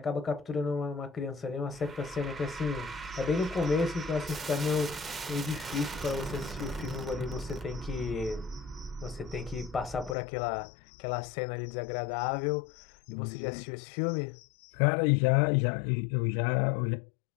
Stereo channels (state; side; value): drops out; right; at 10.2 s